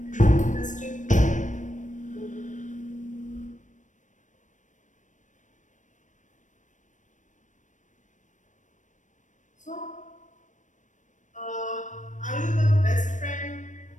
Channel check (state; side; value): late; right; 0.36 ms